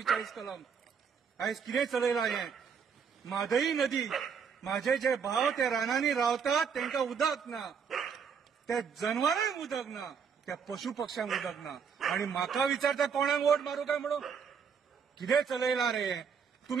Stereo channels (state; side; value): quieter; left; 6.6 dB